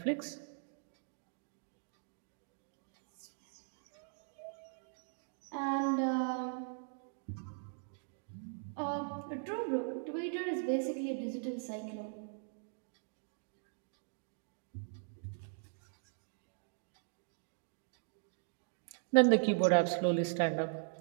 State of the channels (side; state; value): left; silent; digital silence